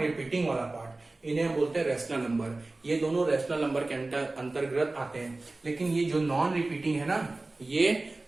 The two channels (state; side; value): quieter; left; 3.1 dB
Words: वाला पार्ट, इन्हें हम बोलते हैं रैशनल नंबर। ये दोनों रैशनल नंबर के अंतर्गत आते हैं, लेकिन ये जो नॉन रिपीटिंग है ना, ये